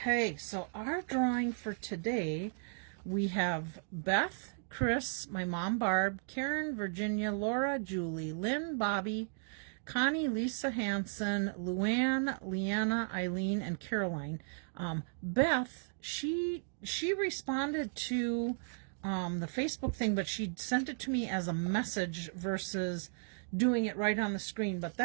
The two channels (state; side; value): silent; left; digital silence